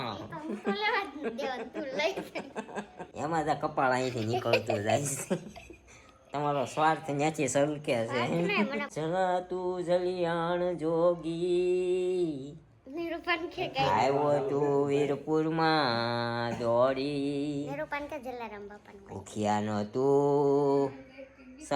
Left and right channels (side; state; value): both; identical; correlation 1.00